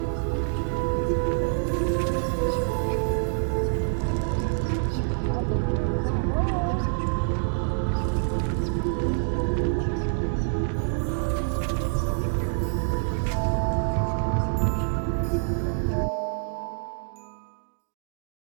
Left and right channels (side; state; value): left; silent; digital silence